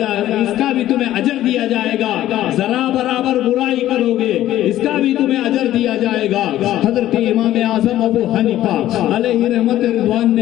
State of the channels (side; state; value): right; quieter; 13.5 dB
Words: اس کا بھی تمہیں اجر دیا جائے گا، ذرا برابر برائی کرو گے اس کا بھی تمہیں اجر دیا جائے گا۔ حضرت امام اعظم ابو حنیفہ علیہ رحمت رضوان